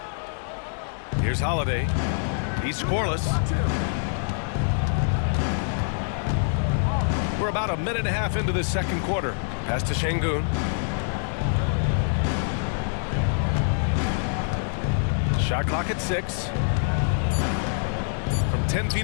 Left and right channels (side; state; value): right; silent; 61 dB below the other